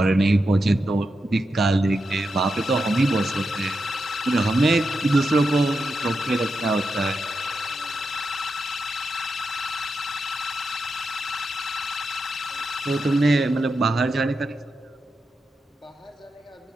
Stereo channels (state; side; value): normal; both; correlation 0.87